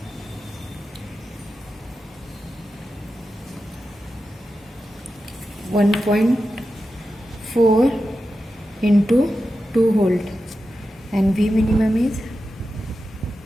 (1.4) into 2 volt and V minimum is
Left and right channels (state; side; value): normal; both; correlation 0.91